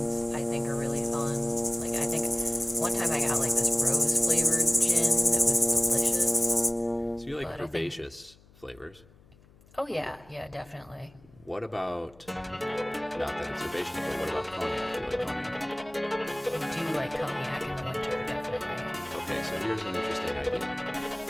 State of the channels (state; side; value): noise; left; hum, 27 dB below the sound